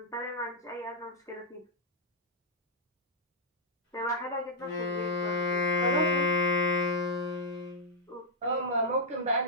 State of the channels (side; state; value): both; normal; correlation -0.06